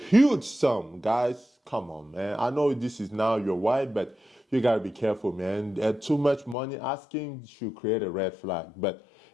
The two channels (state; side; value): drops out; right; at 6.6 s